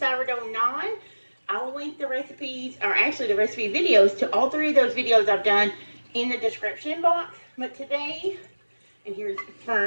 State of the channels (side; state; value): both; inverted; correlation -1.00